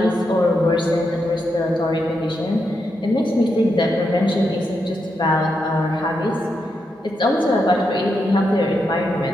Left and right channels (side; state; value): both; normal; correlation 0.83